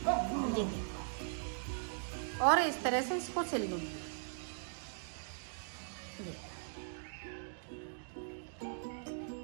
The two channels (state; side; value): silent; left; digital silence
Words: ये देखो, और इस तरह से इसको सिल लूंगी।